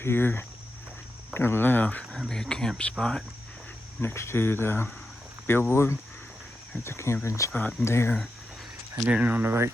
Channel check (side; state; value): both; normal; correlation 0.88